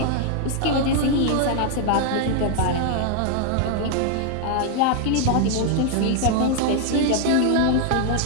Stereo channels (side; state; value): both; different; correlation 0.00